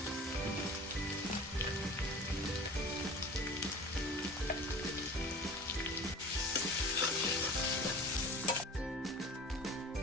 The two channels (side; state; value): both; normal; correlation 0.39